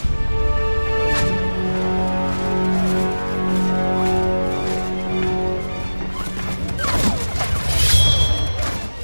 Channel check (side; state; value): both; inverted; correlation -1.00